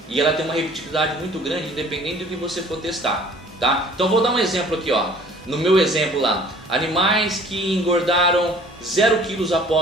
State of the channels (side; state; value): both; normal; correlation 0.51